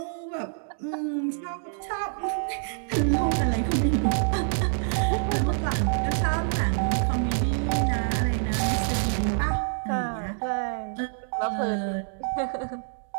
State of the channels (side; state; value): left; silent; digital silence